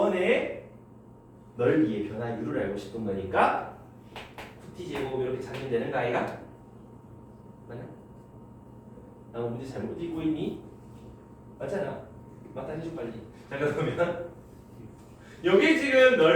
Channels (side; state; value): both; identical; correlation 1.00